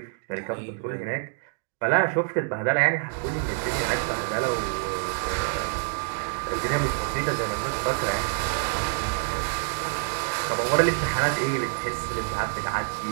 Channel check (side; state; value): left; silent; 60 dB below the other